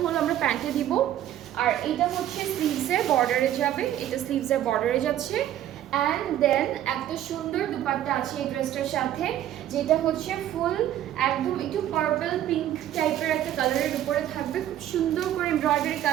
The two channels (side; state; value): left; quieter; 12.0 dB